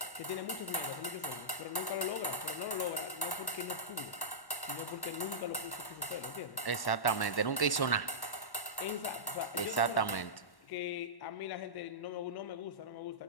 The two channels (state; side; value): late; right; 1.1 ms